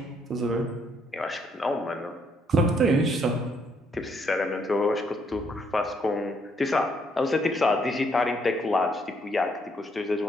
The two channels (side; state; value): both; normal; correlation 0.71